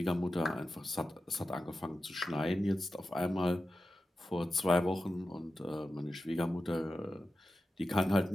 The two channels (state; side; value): normal; both; correlation 0.92